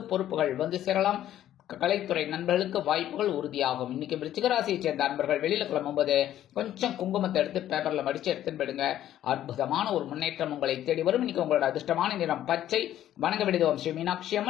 பொறுப்புகள் வந்து சேரலாம். கலைத்துறை நண்பர்களுக்கு வாய்ப்புகள் உறுதியாகும். இன்னைக்கு விருச்சிக ராசியை சேர்ந்த அன்பர்கள் வெளியில கிளம்பும்போது கொஞ்சம் குங்குமத்தை எடுத்து பேப்பர்ல மடிச்சு எடுத்துன்னு போயிடுங்க. அற்புதமான ஒரு முன்னேற்றம் உங்களை தேடி வரும். இன்னைக்கு உங்களோட அதிர்ஷ்டமான நிறம் பச்சை. வணங்க விடுவோம் ஸ்ரீ மீனாட்சி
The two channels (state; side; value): quieter; right; 12.1 dB